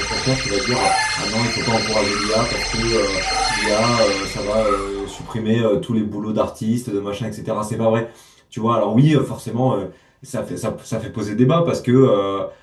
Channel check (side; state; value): both; identical; correlation 1.00